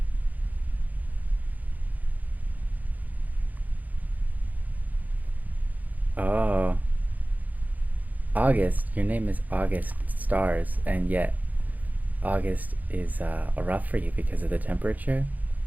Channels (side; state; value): left; late; 0.080 ms